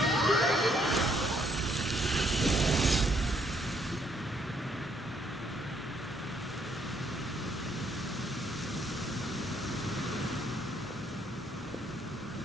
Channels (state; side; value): normal; both; correlation 0.69